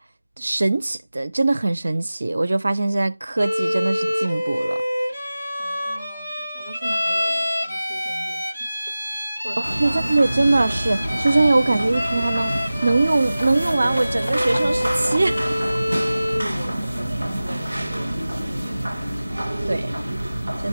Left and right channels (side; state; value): both; inverted; correlation -0.97